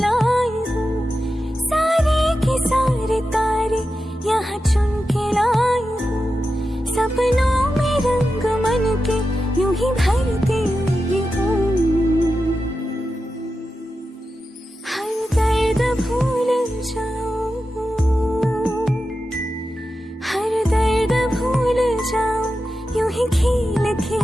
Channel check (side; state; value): both; normal; correlation 0.91